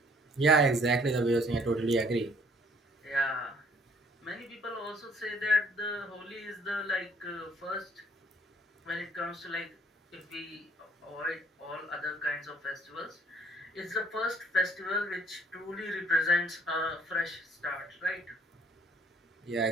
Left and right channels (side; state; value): both; normal; correlation 0.61